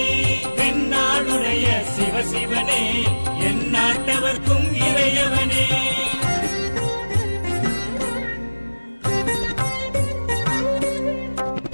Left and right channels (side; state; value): both; inverted; correlation -1.00